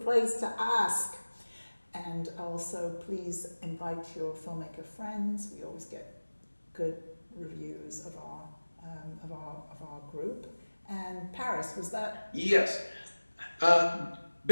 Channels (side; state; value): both; inverted; correlation -1.00